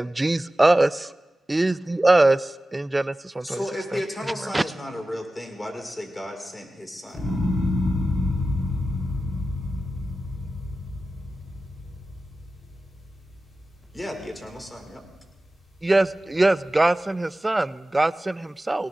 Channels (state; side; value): normal; both; correlation 0.95